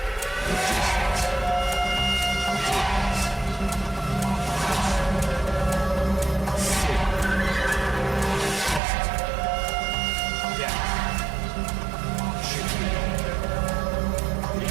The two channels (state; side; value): drops out; left; at 8.8 s